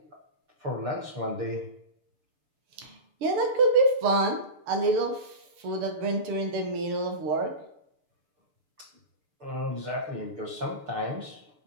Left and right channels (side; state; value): left; late; 6.8 ms